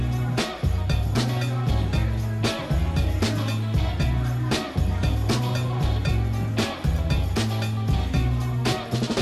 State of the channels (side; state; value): both; identical; correlation 1.00